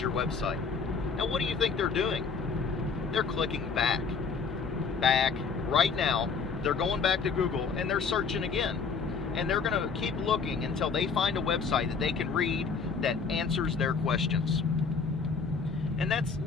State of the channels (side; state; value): right; quieter; 5.3 dB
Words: website. Now, what do you think they're doing? They're clicking back. Right now, they're going back to Google, and they're searching again. And they're going to keep looking until they find a website that they can read that answers their questions. And that's